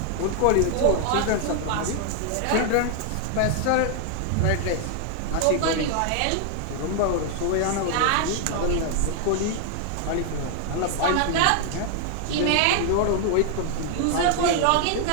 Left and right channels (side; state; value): both; different; correlation 0.00